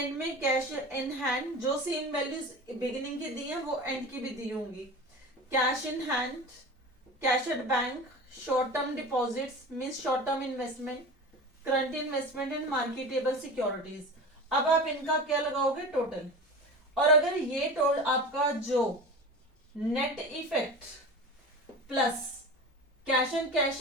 में कैश इन हैंड, जो सेम वैल्यूज बिगिनिंग की दी है वो एंड की भी दी होंगी। Cash in hand, cash at bank, short term deposits means short term investment, current investment and marketable securities. अब आप इनका क्या लगाओगे? टोटल। और अगर ये टोटल आपका जो net effect plus cash and cash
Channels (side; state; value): both; normal; correlation 0.32